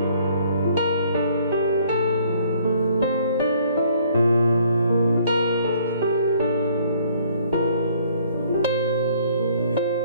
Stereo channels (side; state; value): both; inverted; correlation -0.61